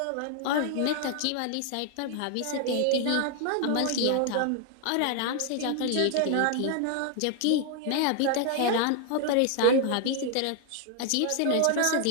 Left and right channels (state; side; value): different; both; correlation 0.00